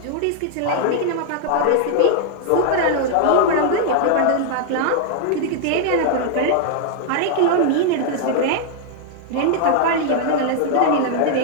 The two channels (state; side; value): different; both; correlation 0.00